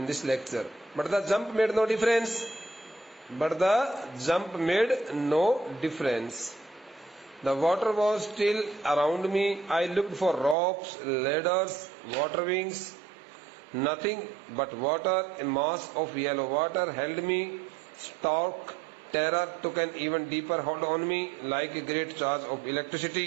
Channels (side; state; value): left; drops out; at 10.6 s